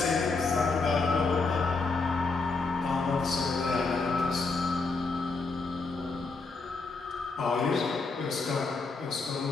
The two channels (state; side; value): quieter; right; 4.0 dB